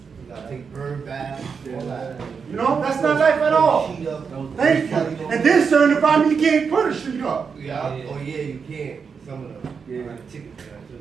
You gotta take bird baths. All that. You know, that's not life at all. Sheet up. Thank you. And then certain environment, you can't put a sheet up. Yeah. Oh yeah, you can't. Some of them. Yeah. Like tickets.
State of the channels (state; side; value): quieter; left; 5.9 dB